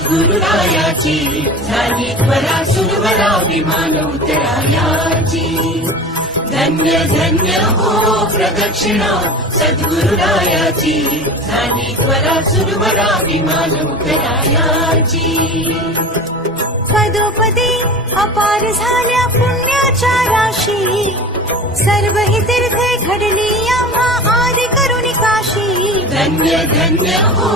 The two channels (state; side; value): normal; both; correlation 0.34